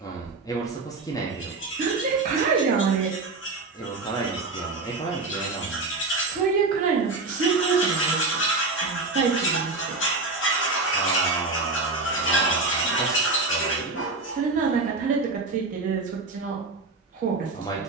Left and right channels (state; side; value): quieter; left; 3.7 dB